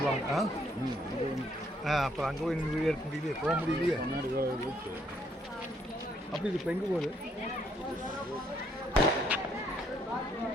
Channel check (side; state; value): both; normal; correlation 0.70